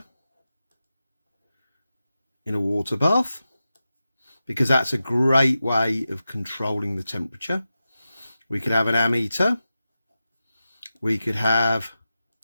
in a water bath, because that's a great way of controlling the temperature. We could have an ammeter. We could have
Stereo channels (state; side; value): inverted; both; correlation -0.92